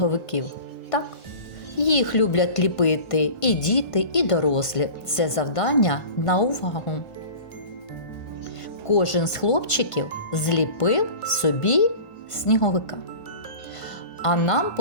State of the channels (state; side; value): late; right; 1.5 ms